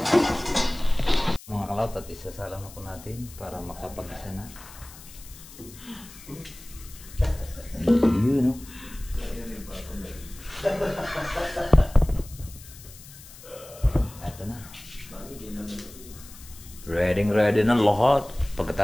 Mga kalawt at isasalang na po natin para makapag-isa na. Yun, no? Ito na. Ready na lahat.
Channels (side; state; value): left; noise; hiss, 18 dB below the sound